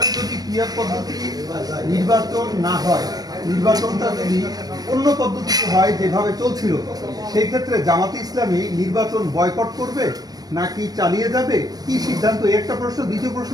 যদি পিআর পদ্ধতি নির্বাচন না হয়, নির্বাচনটা যদি অন্য পদ্ধতিতে হয় যেভাবে চলছিল, সেই ক্ষেত্রে জামাতে ইসলামী নির্বাচন বয়কট করবে নাকি চালিয়ে যাবে, কি সিদ্ধান্ত? একটা প্রশ্ন। দ্বিতীয়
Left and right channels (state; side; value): late; left; 0.19 ms